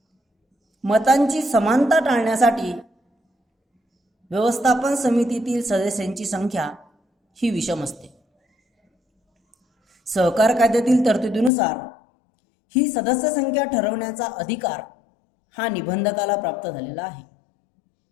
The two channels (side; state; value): right; drops out; at 11.5 s